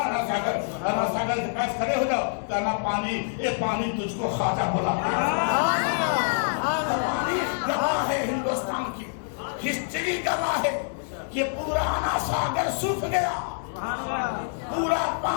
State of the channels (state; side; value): silent; right; digital silence